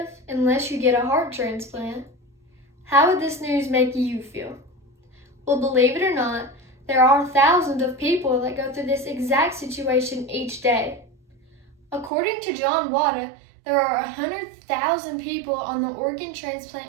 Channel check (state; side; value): drops out; left; at 12.1 s